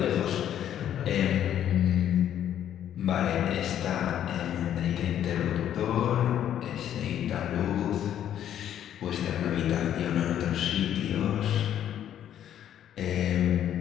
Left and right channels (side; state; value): right; quieter; 10.6 dB